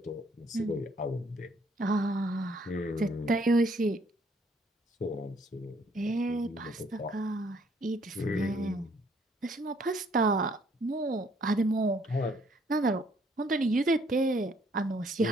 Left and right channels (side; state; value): both; normal; correlation 0.65